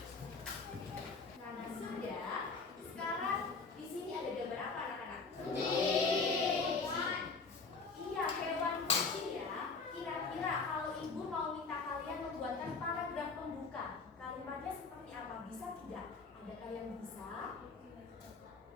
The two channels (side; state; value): right; quieter; 4.5 dB